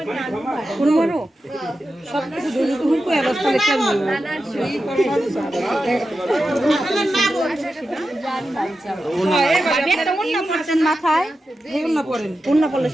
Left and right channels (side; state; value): both; normal; correlation 0.91